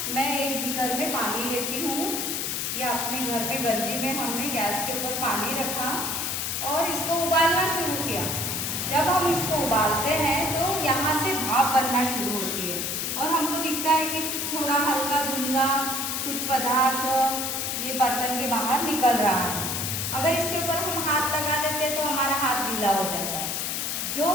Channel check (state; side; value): noise; left; hiss, 1 dB below the sound